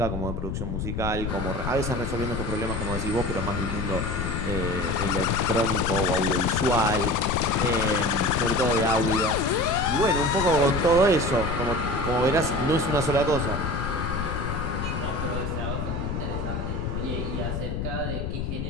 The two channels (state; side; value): noise; left; rumble, 3 dB below the sound